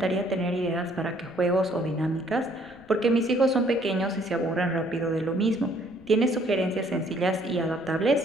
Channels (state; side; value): noise; left; rumble, 26 dB below the sound